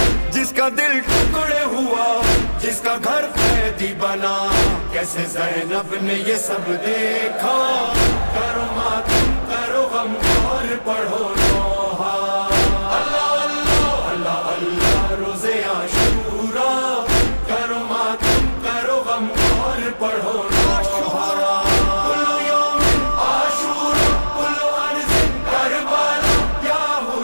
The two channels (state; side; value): inverted; both; correlation -1.00